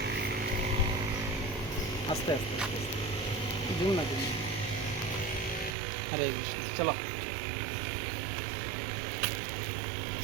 আস্তে আস্তে জুম না। হরে কৃষ্ণ, চলো।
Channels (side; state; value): left; drops out; at 5.8 s